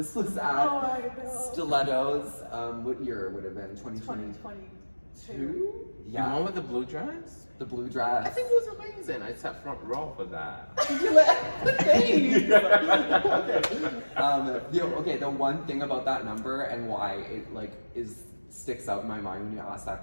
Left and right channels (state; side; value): inverted; both; correlation -1.00